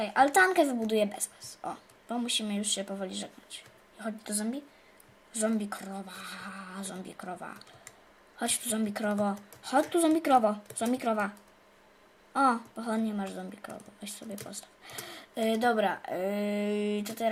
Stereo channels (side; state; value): both; identical; correlation 1.00